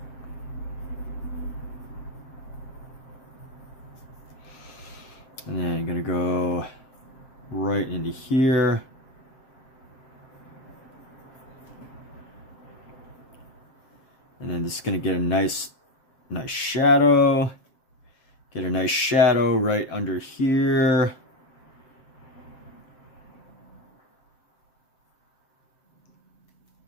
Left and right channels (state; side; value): late; right; 7.6 ms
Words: And then I'm gonna go right into here. And then just gonna get a nice shadow. Get a nice shadow right under here.